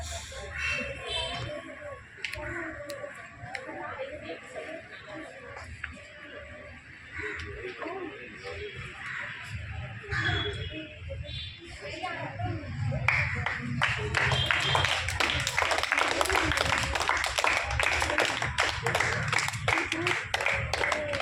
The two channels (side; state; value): both; identical; correlation 1.00